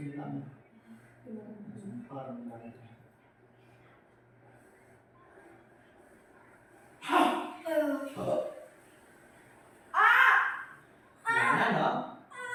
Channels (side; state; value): both; identical; correlation 1.00